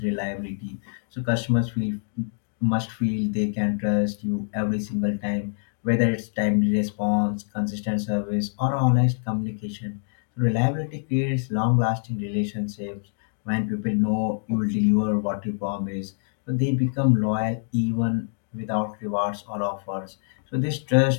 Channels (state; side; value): silent; right; digital silence